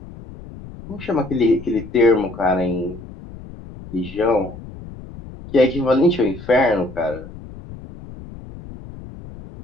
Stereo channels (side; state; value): left; noise; rumble, 15 dB below the sound